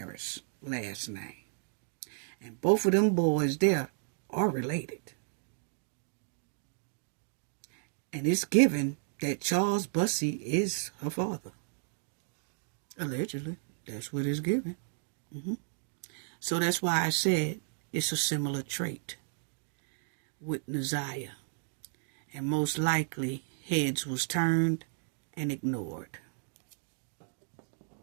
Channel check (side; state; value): left; silent; digital silence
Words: last name. And both of them boys there are related. And it's given that Charles Bussey is her father. Allegedly. That's what it's given. So that's why I said it's a similar trait with Naziah. And most likely, heads was turned and ignored.